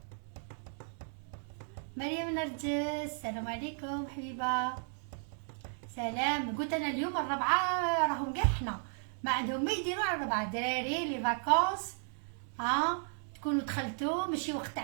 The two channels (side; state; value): left; silent; 55 dB below the other